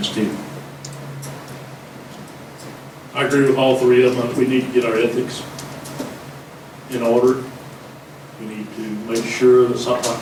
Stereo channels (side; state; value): both; identical; correlation 1.00